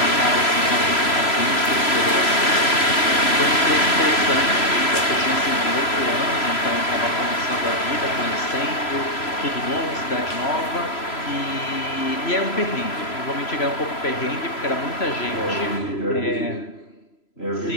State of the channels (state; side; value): late; right; 3.0 ms